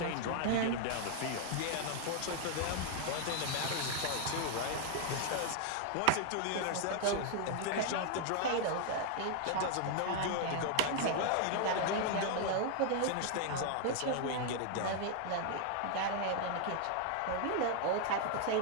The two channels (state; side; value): different; both; correlation 0.00